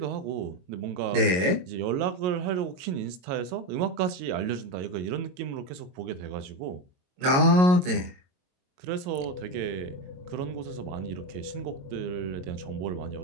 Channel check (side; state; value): left; late; 22 ms